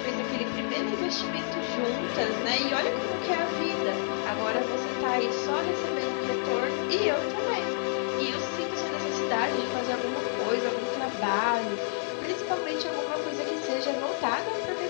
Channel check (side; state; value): right; silent; digital silence